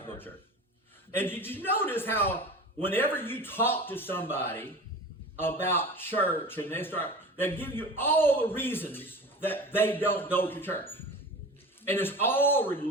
go to church. And did you notice how whenever you talk to somebody about church and they give you all the reasons that they don't go to church. And it's all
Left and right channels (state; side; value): normal; both; correlation 0.35